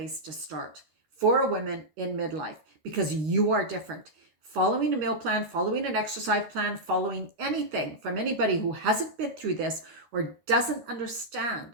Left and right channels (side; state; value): left; late; 13 ms